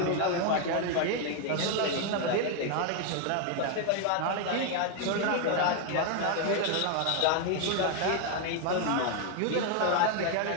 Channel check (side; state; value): both; different; correlation 0.01